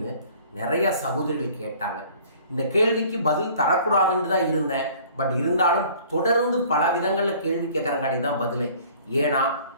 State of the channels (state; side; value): inverted; both; correlation -0.52